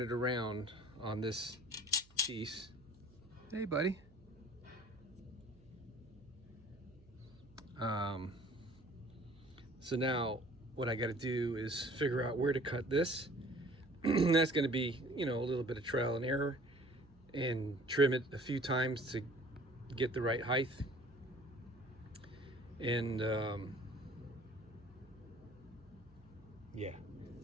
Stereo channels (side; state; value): right; noise; hum, 26 dB below the sound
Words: it around on this piece. Hey buddy. So now what I got to do is figure out where to cut this. That's going to be, you know, a little bit of trial and error, and trim it a few times to get the right height. And yeah.